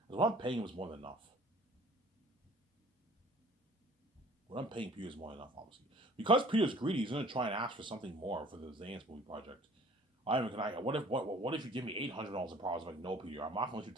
because what I'm paying him is more than enough. What I'm paying Peter is more than enough, obviously. Because Peter's greedy, he's going to try and ask for something more for the Zanis movie project. What if you give me $800 a profit? I'm like, no, Peter, I'm not going to let you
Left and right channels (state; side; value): normal; both; correlation 0.51